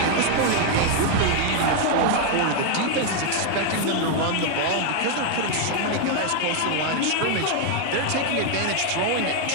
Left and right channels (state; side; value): different; both; correlation 0.00